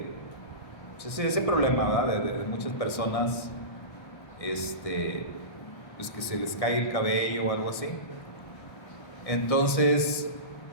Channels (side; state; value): right; late; 1.6 ms